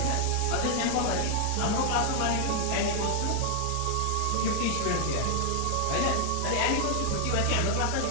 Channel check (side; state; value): both; different; correlation 0.00